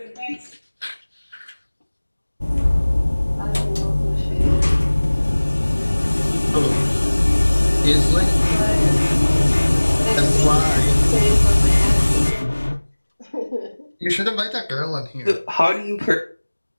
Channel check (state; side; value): inverted; both; correlation -1.00